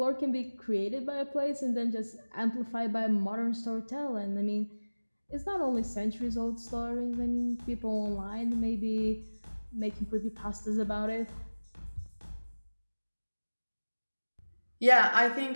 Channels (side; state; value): both; inverted; correlation -1.00